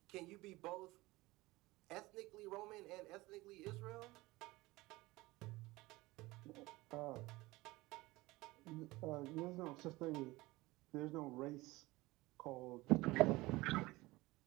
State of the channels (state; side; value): quieter; left; 20.5 dB